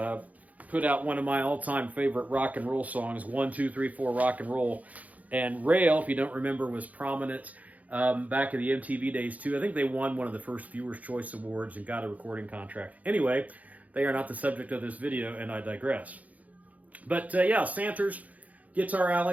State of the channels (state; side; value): late; left; 0.074 ms